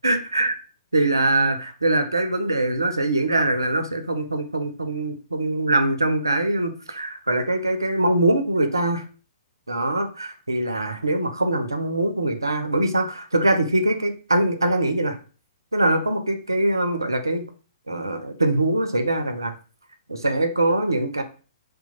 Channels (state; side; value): inverted; both; correlation -0.78